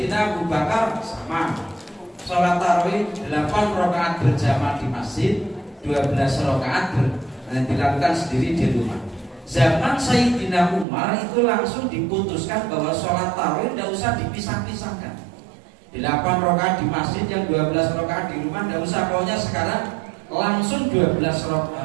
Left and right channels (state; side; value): drops out; left; at 10.9 s